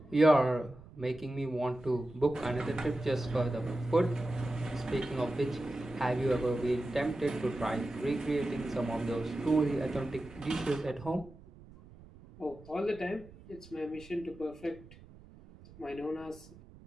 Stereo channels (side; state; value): right; noise; rumble, 21 dB below the sound